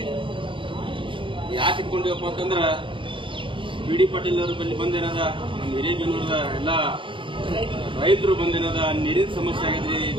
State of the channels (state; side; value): late; left; 0.25 ms